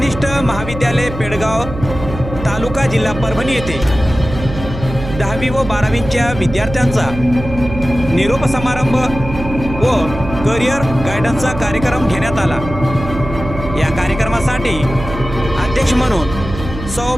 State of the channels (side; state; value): right; noise; hum, 9 dB below the sound